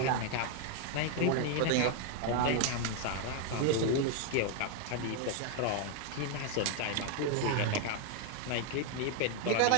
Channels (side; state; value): both; different; correlation 0.01